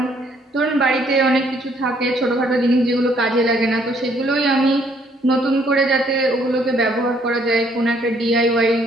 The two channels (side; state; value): both; normal; correlation 0.66